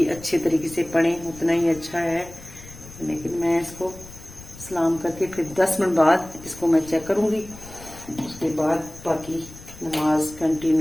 अच्छे तरीके से पढ़ें उतना ही अच्छा है, लेकिन मैं इसको सलाम करके फिर 10 मिनट बाद इसको मैं चेक करूँगी। उसके बाद बाकी नमाज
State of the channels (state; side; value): noise; left; rumble, 18 dB below the sound